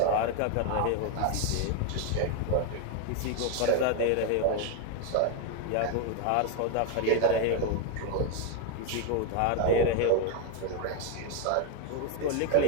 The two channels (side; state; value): both; different; correlation 0.01